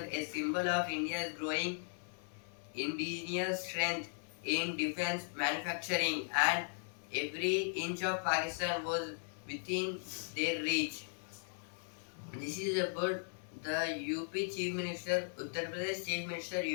a symbol of India's growing indigenous strength in defense manufacturing, and every inch of Pakistan was within their reach. This is about the UP Chief Minister, Uttar Pradesh Chief Minister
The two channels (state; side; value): silent; right; 53 dB below the other